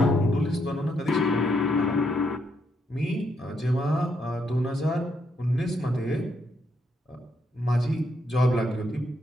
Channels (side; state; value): both; normal; correlation 0.77